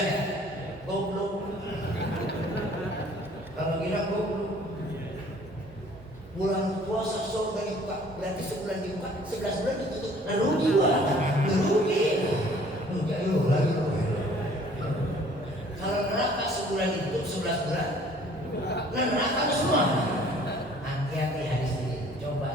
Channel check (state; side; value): noise; right; hum, 23 dB below the sound